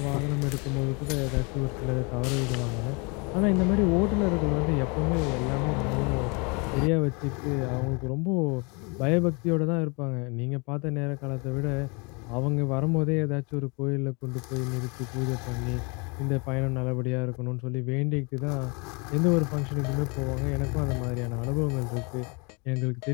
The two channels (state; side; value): quieter; right; 31.1 dB